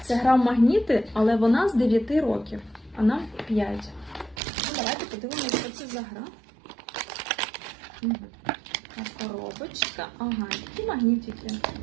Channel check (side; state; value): left; drops out; at 4.4 s